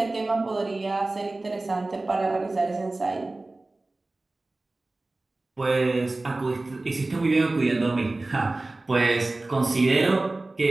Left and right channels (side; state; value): left; quieter; 3.0 dB